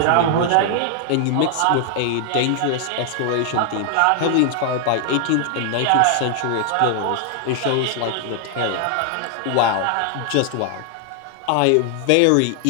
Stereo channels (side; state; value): both; different; correlation 0.00